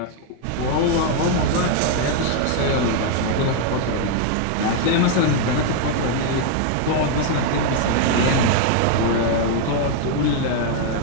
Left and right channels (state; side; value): different; both; correlation 0.00